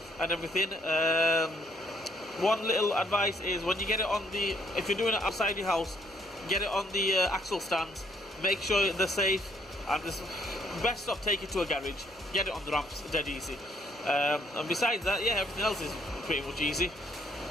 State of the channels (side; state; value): both; normal; correlation 0.68